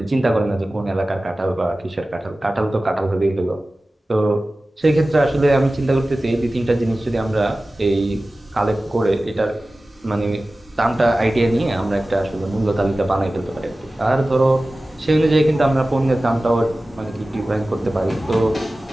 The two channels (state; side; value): normal; both; correlation 0.96